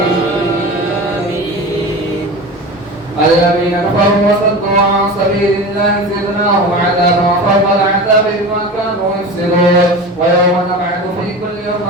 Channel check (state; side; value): normal; both; correlation 0.31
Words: الذين كفروا وصدوا عن سبيل الله زدناهم عذابا فوق العذاب بما كانوا يفسدون. ويوم نبعث في كل